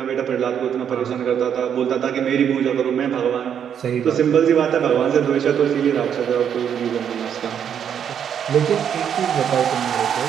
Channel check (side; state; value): left; quieter; 8.5 dB